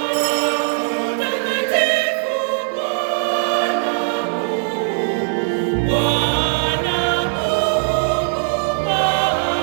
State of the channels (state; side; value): silent; left; 59 dB below the other